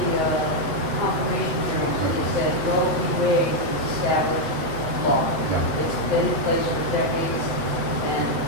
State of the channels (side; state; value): left; late; 8.3 ms